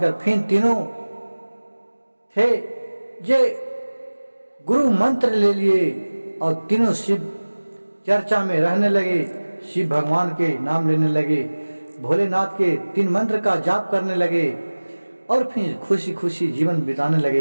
फिर तीनों थे जे गुरु मंत्र ले लिए और तीनों शिव चर्चा में रहने लगे, शिव भगवान के नाम लेने लगे, भोलेनाथ के 3 मंत्र का जाप करने लगे और फिर खुशी खुशी जीवन बिताने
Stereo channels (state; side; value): inverted; both; correlation -1.00